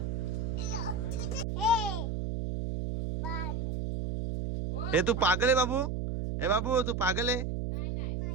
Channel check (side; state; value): right; noise; hum, 2 dB below the sound